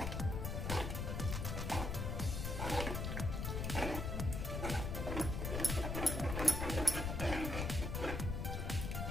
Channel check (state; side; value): noise; left; rumble, 2 dB below the sound